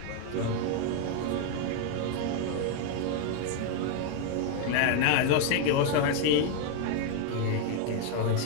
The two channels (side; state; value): both; different; correlation 0.00